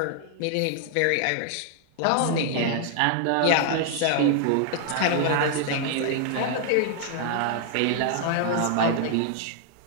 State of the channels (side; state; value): both; different; correlation 0.00